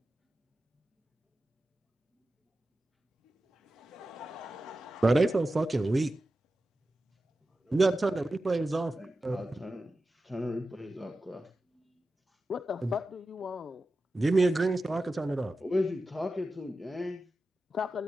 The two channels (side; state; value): both; normal; correlation 0.93